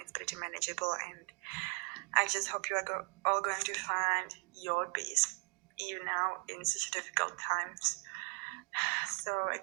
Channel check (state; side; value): quieter; left; 35.5 dB